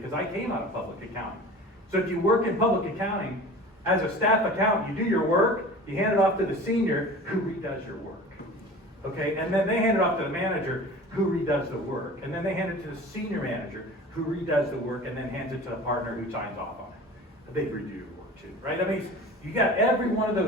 I came out of public accounting. So if you work in public accounting, as a staff accountant, you do your work, you hand it off to the senior who redoes your work. Okay, and then they hand it off to the manager who redoes the work. And then they hand it to the senior manager who redoes the work and then hands it to the partner who signs off on it. They redo your work too, right? You got every one of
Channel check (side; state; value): both; normal; correlation 0.39